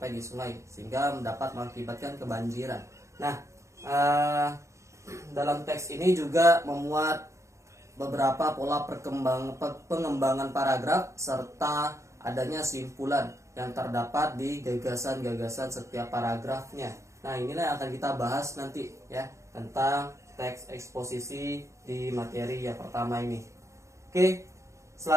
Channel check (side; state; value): left; late; 0.14 ms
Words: di sungai sehingga dapat mengakibatkan kebanjiran. Nah, dalam teks ini juga memuat beberapa pola pengembangan paragraf serta adanya simpulan yang terdapat di gagasan-gagasan setiap paragrafnya. Nah, inilah yang akan kita bahas nanti ya, tentang teks eksposisi di materi yang pertama ini. Oke,